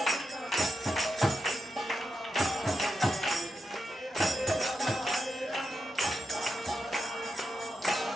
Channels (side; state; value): both; normal; correlation 0.86